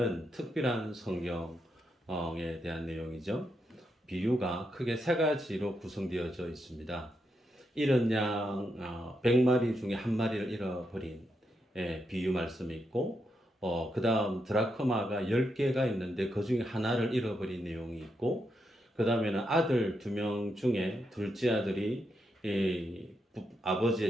특별한 성경에 대한 내용이죠. 비유가 크게 세 가지로 구성되어져 있습니다. 잃은 양 100마리 중에 한 마리를 잃어버린 비유 말씀이 있고, 그 다음 드라크마가 10개가 있는데 그 중에 하나를 잃어버린 내용이 있고, 그 다음에는 아들 2명 중에 둘째 아들이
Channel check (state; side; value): normal; both; correlation 0.82